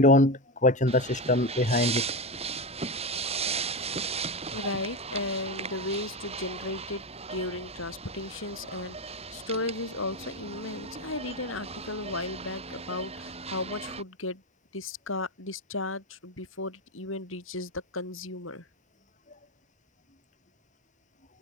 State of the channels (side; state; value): both; normal; correlation 0.15